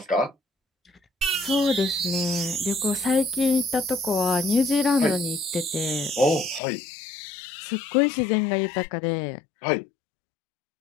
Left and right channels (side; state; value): right; drops out; at 6.6 s